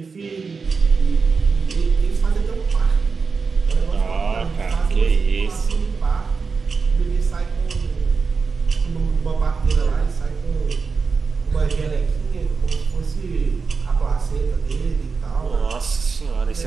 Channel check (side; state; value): left; quieter; 4.9 dB